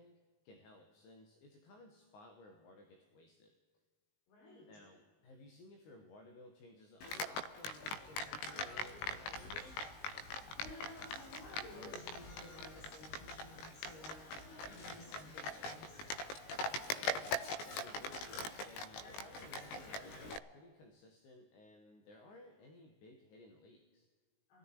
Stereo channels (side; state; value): right; late; 19 ms